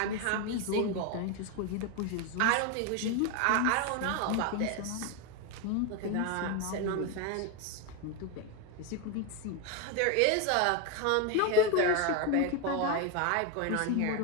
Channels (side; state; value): both; different; correlation 0.02